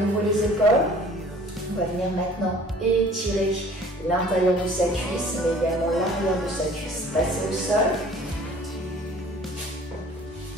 les épaules. On va venir maintenant étirer l'intérieur de sa cuisse, mais également l'arrière de sa cuisse. Passez au sol.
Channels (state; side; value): normal; both; correlation 0.50